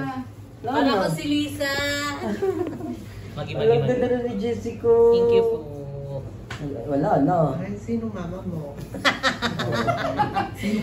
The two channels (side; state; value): both; identical; correlation 1.00